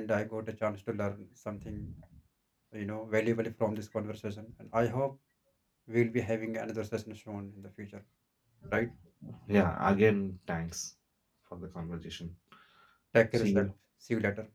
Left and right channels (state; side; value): identical; both; correlation 1.00